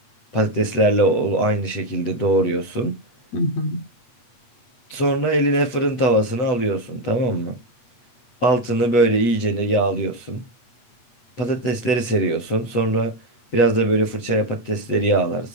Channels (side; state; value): right; late; 8.0 ms